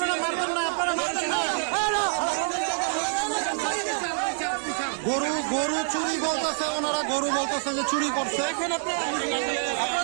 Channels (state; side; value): silent; left; 58 dB below the other